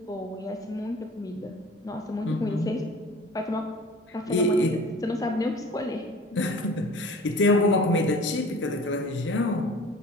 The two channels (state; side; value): normal; both; correlation 0.43